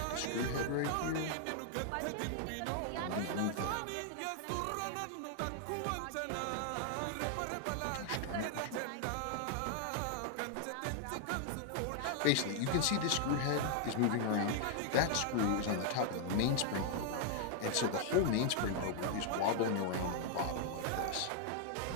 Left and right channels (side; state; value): both; different; correlation 0.00